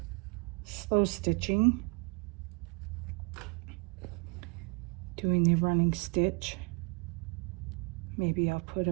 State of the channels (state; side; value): quieter; left; 33.7 dB